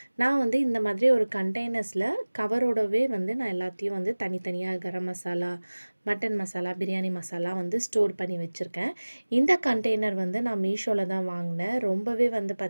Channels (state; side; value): inverted; both; correlation -1.00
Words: நான் வந்து இந்த மாதிரி ஒரு கண்டெய்னர்ஸில் கவரோடவே வந்து நான் எல்லாத்தையும் வந்து தனித்தனியாக கரம் மசாலா, மட்டன் மசாலா, பிரியாணி மசாலா வந்து ஸ்டோர் பண்ணி வச்சுருக்கேன். இந்த கண்டெய்னர் வந்து நான் மீஷோவில் தான் வாங்கினேன். ரொம்பவே வந்து